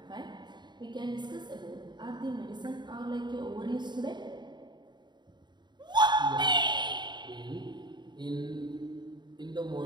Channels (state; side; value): late; left; 0.21 ms